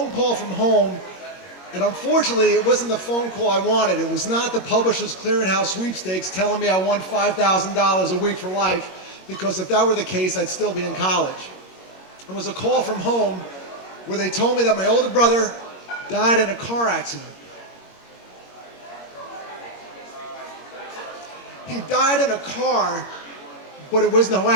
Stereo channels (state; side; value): late; right; 21 ms